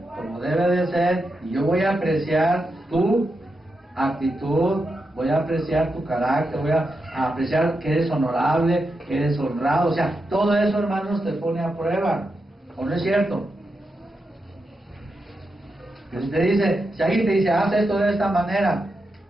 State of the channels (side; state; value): both; normal; correlation 0.87